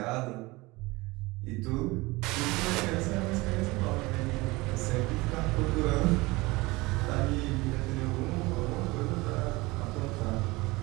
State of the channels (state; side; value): quieter; left; 22.4 dB